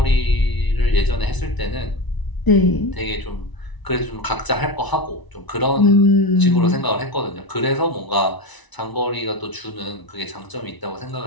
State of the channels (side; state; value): right; late; 1.0 ms